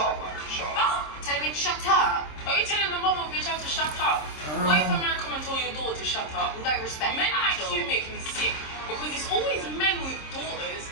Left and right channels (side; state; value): right; late; 26 ms